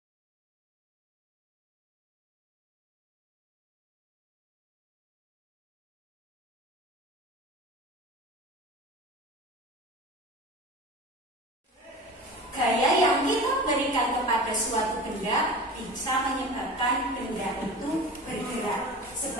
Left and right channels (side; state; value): both; normal; correlation 0.35